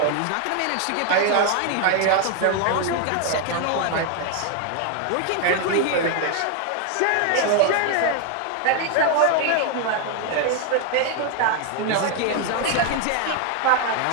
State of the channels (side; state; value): both; different; correlation 0.01